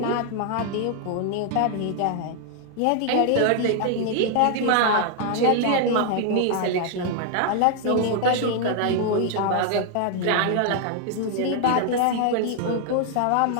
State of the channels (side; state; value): both; different; correlation 0.00